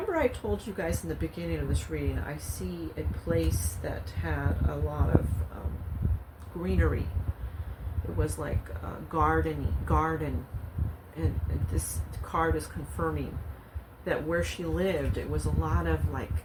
I told you guys in the beginning of this reading, I see a place that had a lot of greenery. It was like a garden, and this card is confirming that where she lived, it was a lot of, like,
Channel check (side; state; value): both; identical; correlation 1.00